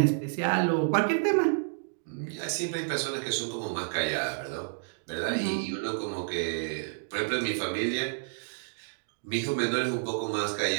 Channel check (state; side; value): silent; left; digital silence